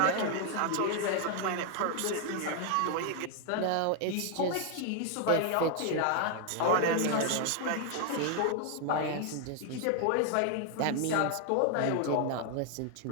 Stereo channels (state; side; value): different; both; correlation 0.00